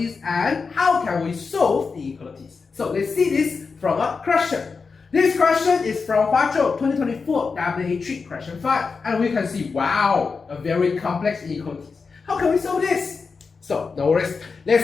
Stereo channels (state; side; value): quieter; right; 4.9 dB